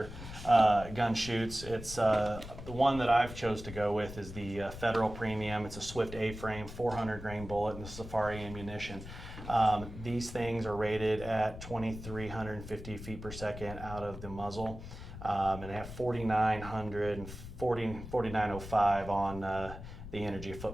gun shoots, it's the one that I've chose to go with is the Federal Premium. It's a Swift A-frame 400 grain bullet and the Safari ammunition. These things are rated at 2,350 feet per second out of the muzzle, and they have 4,900 and 4,905 on the energy of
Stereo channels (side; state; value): left; noise; rumble, 11 dB below the sound